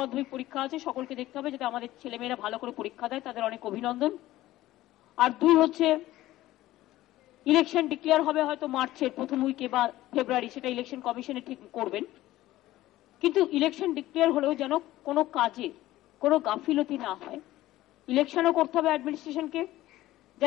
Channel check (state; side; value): quieter; right; 15.9 dB